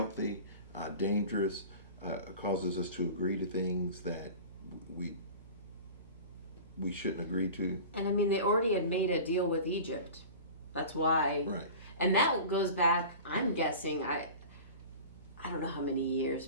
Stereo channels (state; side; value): inverted; both; correlation -0.37